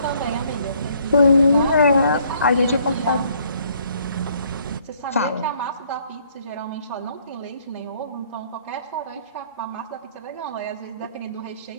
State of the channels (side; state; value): both; inverted; correlation -0.63